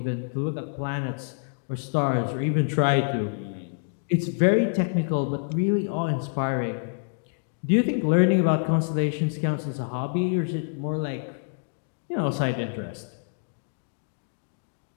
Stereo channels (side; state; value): right; silent; digital silence